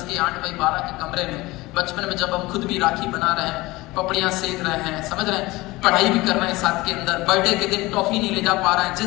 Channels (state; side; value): quieter; right; 20.6 dB